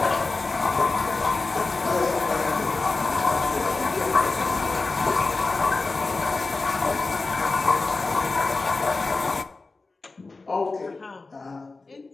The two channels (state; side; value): quieter; right; 3.7 dB